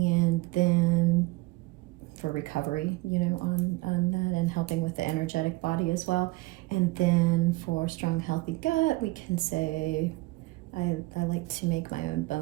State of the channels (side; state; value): left; quieter; 21.3 dB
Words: then for recovery, on that, and helping with the energetic body as well. And then for strong, healthy gut, we can say I like to make my own